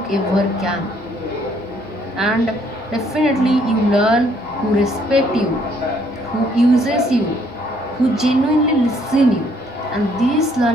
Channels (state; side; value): normal; both; correlation 0.66